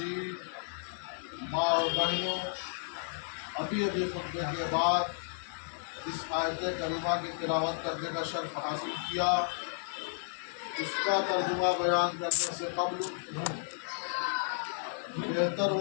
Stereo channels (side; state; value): right; silent; 56 dB below the other